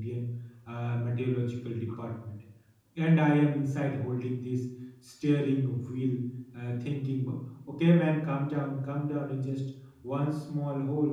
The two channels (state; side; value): identical; both; correlation 1.00